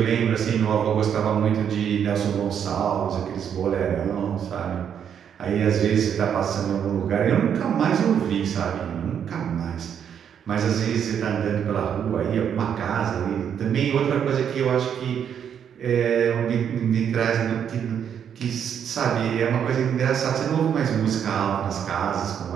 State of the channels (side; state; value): left; quieter; 8.4 dB